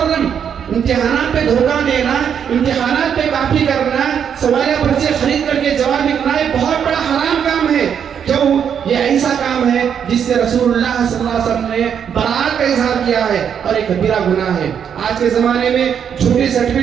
امتحانات پہ دھوکہ دینا، امتحانات پہ کاپی کرنا، سوالیہ پرچے خرید کر کے جواب لکھنا یہ بہت بڑا حرام کام ہے. کیوں؟ یہ ایسا کام ہے جس سے رسول اللہ صلی اللہ علیہ وسلم نے برات کا اظہار کیا ہے اور ایک کبیرہ گناہ ہے. آج کے زمانے میں جھوٹی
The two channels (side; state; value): left; quieter; 8.0 dB